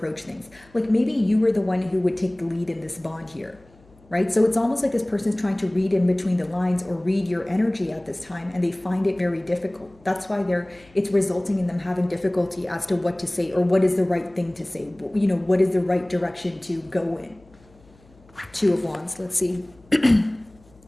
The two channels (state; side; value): noise; left; hum, 28 dB below the sound